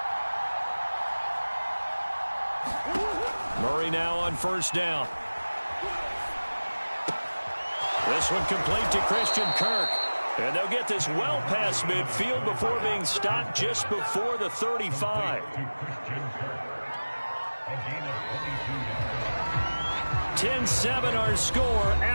Murray now on first down. This one complete to Christian Kirk. And they'll get this well past midfield before being stopped just before the 35. 10-7 our score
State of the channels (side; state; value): both; inverted; correlation -1.00